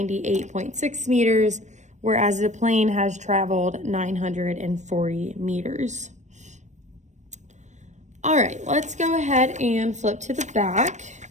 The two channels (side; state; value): left; late; 0.34 ms